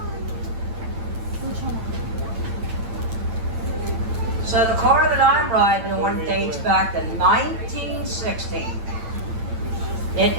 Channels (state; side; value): late; left; 8.9 ms